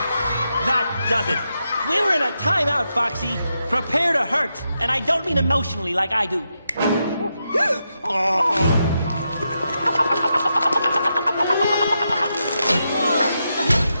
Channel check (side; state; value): both; inverted; correlation -0.85